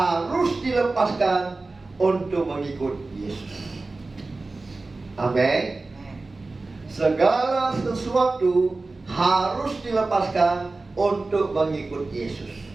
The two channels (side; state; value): left; quieter; 3.4 dB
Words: dilepaskan untuk mengikut Yesus. Amin. Segala sesuatu harus dilepaskan untuk mengikut Yesus.